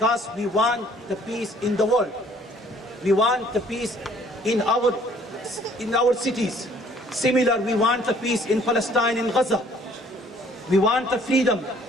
we want the peace in the world. We want the peace in our cities. Similar, we want the peace in Palestine, in Gaza. We want the freedom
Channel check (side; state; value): both; normal; correlation 0.59